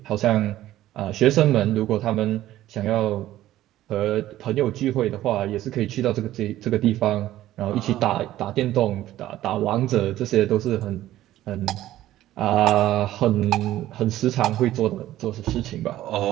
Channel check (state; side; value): quieter; left; 14.2 dB